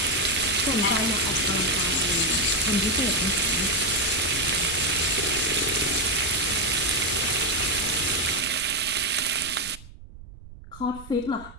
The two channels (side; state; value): right; noise; rumble, 18 dB below the sound